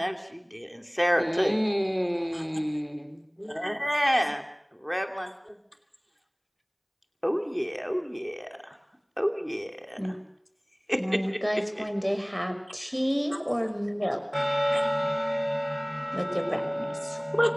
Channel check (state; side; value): identical; both; correlation 1.00